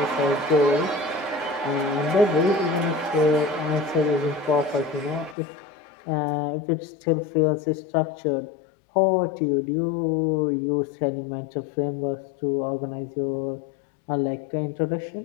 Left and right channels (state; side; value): drops out; right; at 5.4 s